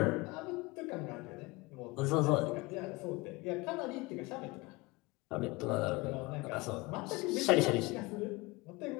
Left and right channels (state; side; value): quieter; right; 23.5 dB